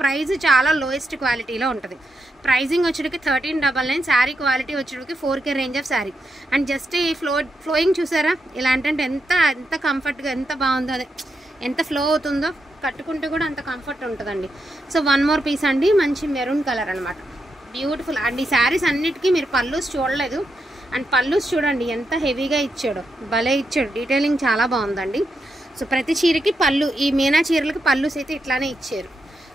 ప్రైస్ చాలా లోయెస్ట్ క్వాలిటీలో ఉంటుంది, ప్రైజింగ్ వచ్చేటికి 1399, శారీ క్వాలిటీ వచ్చేటికి 4K range of sari. And just ఈ ఫ్లోయింగ్ చూసారా, ఇలా అంటే ఎంత కంఫర్ట్గా, ఎంత బాగుందో, అదే ఎంత ఫ్లో అవుతుందో, కట్టుకుంటే కూడా అంత కంఫర్ట్ ఉంటుందండి। సో 1 మోర్ పీస్ అండి, మంచి మెరూన్ కలర్ అనమాట, బ్యూటిఫుల్। అండ్ ఈ శారీస్ అన్నిటికీ మీరు పల్లూస్ చూడలేదు, అండ్ పల్లూస్ చూడండి ఎంత హెవీగా ఇచ్చాడు, భలే ఇచ్చాడు, డీటెయిలింగ్ చాలా బాగుందండి। సో ప్రతి చీరకి పళ్ళు, ఈ మీనా చీరలకి పల్లూస్ అయితే ఇట్లానే ఇచ్చారు।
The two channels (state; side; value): normal; both; correlation 0.84